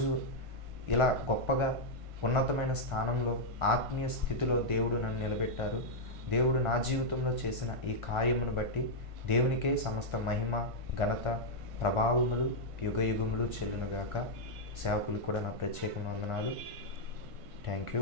ఇలా గొప్పగా ఉన్నతమైన స్థానంలో ఆత్మీయ స్థితిలో దేవుడు నన్ను నిలబెట్టారు. దేవుడు నా జీవితంలో చేసిన ఈ కార్యమును బట్టి దేవునికే సమస్త మహిమ, ఘనత, ప్రభావములు యుగయుగములు చెల్లునుగాక. సేవకులకు కూడా నా ప్రత్యేక వందనాలు. Thank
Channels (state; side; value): late; left; 1.5 ms